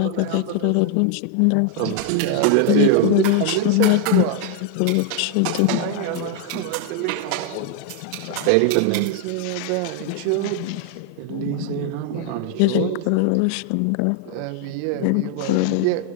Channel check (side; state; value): both; different; correlation 0.00